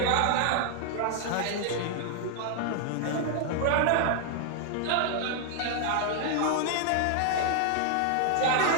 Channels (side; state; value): both; different; correlation 0.00